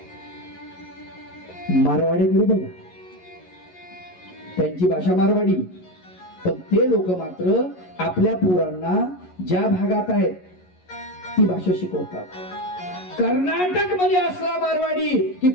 मारवाडीकडे बघा, त्यांची भाषा मारवाडी, पण ते लोक मात्र आपल्या पोरांना ज्या भागात आहेत ती भाषा शिकवतात. कर्नाटक मध्ये असला मारवाडी की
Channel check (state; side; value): late; right; 11 ms